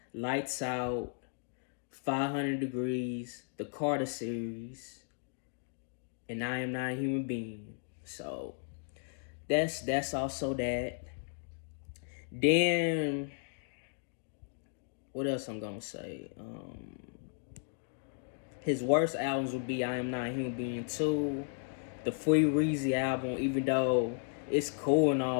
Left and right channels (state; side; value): silent; right; 55 dB below the other